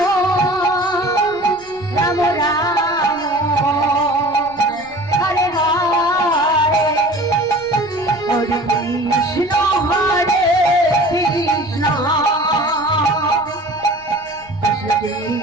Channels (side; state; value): left; noise; rumble, 25 dB below the sound